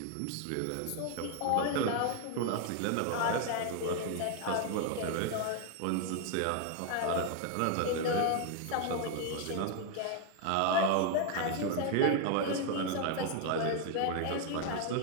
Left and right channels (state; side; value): different; both; correlation 0.01